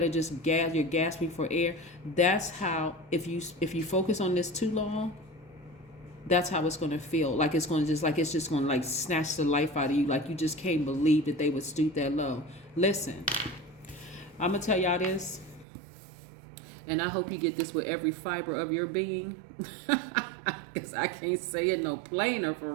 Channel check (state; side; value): drops out; left; at 15.7 s